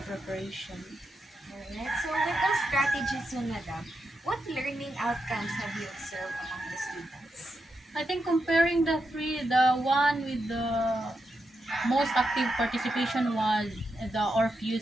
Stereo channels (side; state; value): both; normal; correlation 0.85